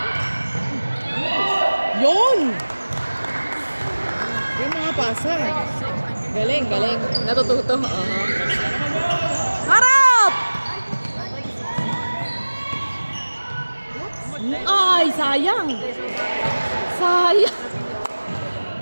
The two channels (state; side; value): inverted; both; correlation -1.00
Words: Yun! Yung mga pasa. Galing. Natututo. Harap! Ay, sayang.